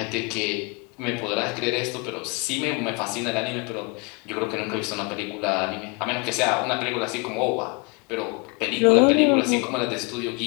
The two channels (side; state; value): right; quieter; 31.2 dB